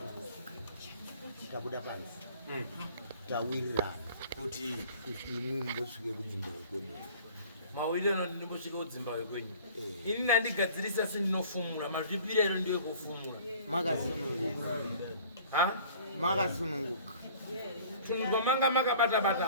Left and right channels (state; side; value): inverted; both; correlation -0.49